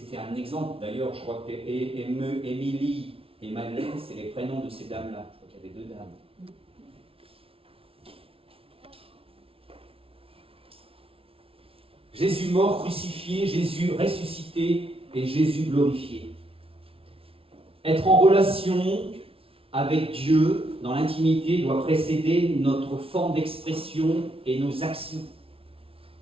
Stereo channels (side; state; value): left; late; 0.26 ms